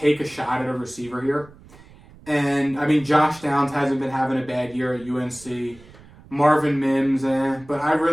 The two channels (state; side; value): noise; right; rumble, 23 dB below the sound